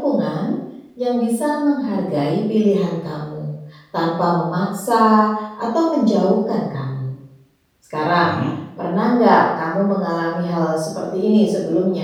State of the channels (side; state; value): both; identical; correlation 1.00